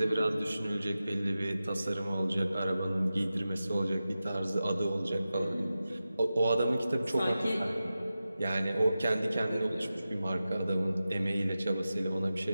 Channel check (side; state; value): both; inverted; correlation -0.93